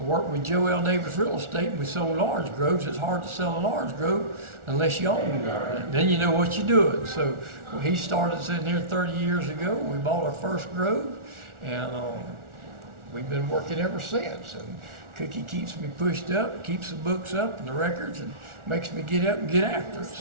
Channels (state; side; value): late; left; 1.4 ms